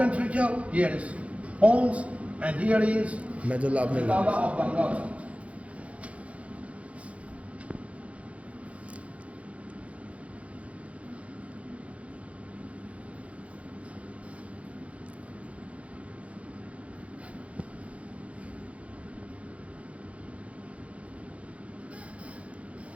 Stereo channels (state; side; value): late; left; 0.064 ms